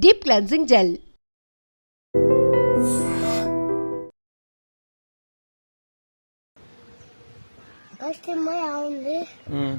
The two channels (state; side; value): inverted; both; correlation -1.00